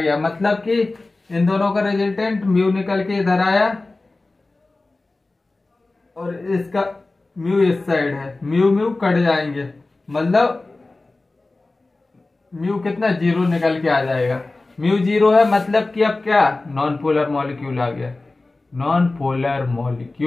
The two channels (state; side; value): quieter; right; 3.2 dB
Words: मतलब कि इन दोनों का रिजल्टेंट म्यू निकल के इधर आया और इसका म्यू इस साइड है, म्यू कट जाएंगे, मतलब म्यू कितना, जीरो निकल के आ जाएगा। म्यू जीरो है, मतलब कि अब क्या, नॉन पोलर मॉलिक्यूल आ गया,